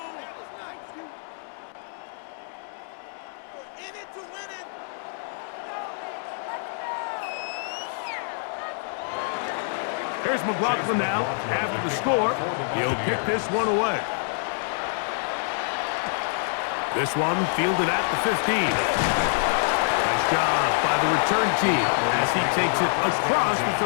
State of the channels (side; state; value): right; silent; 61 dB below the other